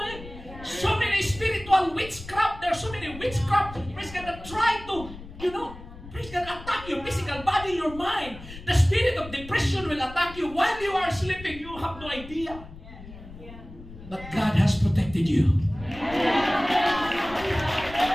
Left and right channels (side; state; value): left; noise; rumble, 15 dB below the sound